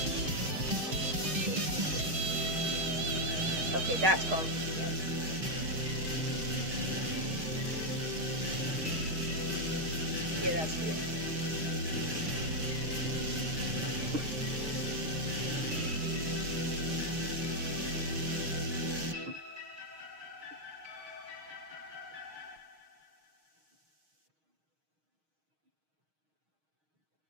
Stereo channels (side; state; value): left; late; 6.4 ms